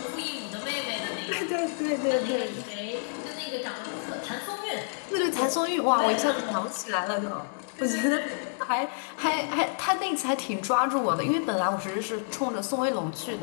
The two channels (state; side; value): silent; right; digital silence